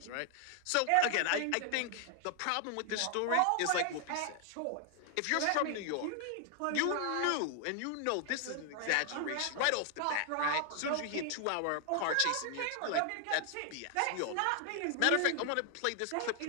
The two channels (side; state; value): both; different; correlation 0.00